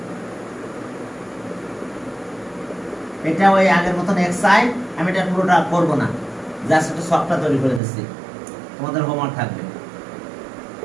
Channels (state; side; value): drops out; left; at 7.8 s